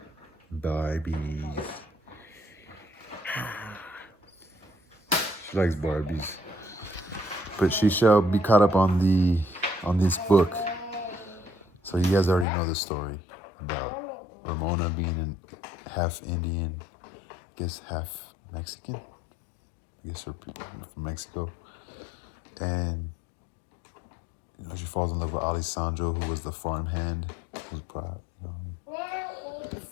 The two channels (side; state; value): right; drops out; at 12.5 s